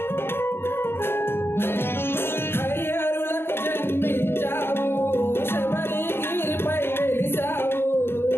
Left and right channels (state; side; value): late; right; 0.11 ms